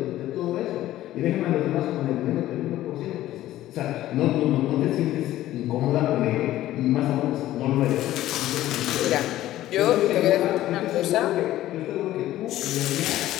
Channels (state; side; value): quieter; right; 14.4 dB